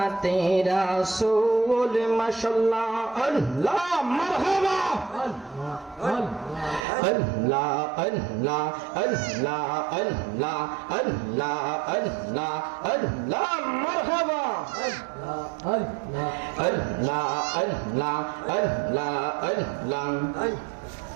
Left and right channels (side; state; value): left; drops out; at 6.9 s